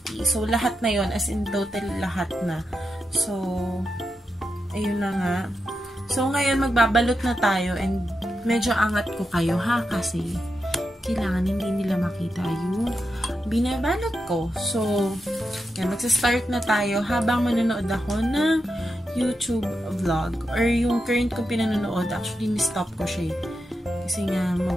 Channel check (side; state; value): both; normal; correlation 0.87